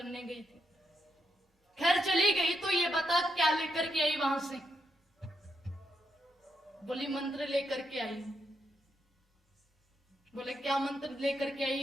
गई थी। खैर चली गई तो ये बता क्या लेकर के आई वहां से? बोली मंत्र लेकर के आई। बोले क्या मंत्र लेकर के आई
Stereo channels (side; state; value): both; normal; correlation 0.81